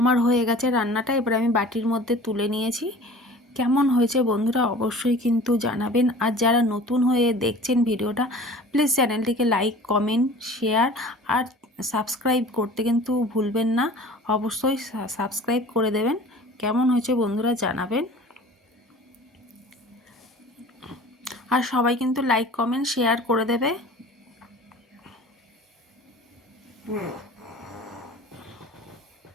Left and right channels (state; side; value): normal; both; correlation 0.43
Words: আমার হয়ে গেছে রান্নাটা, এবার আমি বাটির মধ্যে তুলে নিয়েছি। কেমন হয়েছে বন্ধুরা অবশ্যই কিন্তু জানাবেন। আর যারা নতুন হয়ে দেখছেন ভিডিওটা, প্লিজ চ্যানেলটিকে লাইক, কমেন্ট, শেয়ার আর সাবস্ক্রাইব করতে কিন্তু ভুলবেন না। অবশ্যই সাবস্ক্রাইব করে দেবেন। কেমন হয়েছে বন্ধুরা জানাবেন। আর সবাই কিন্তু লাইক, কমেন্ট, শেয়ার করে দেবে।